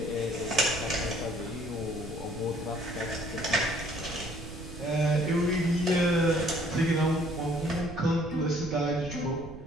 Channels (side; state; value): right; noise; rumble, 13 dB below the sound